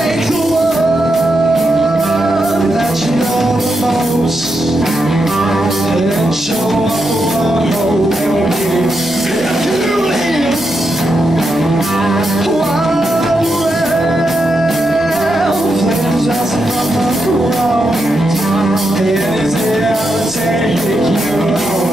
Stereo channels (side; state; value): right; noise; rumble, 21 dB below the sound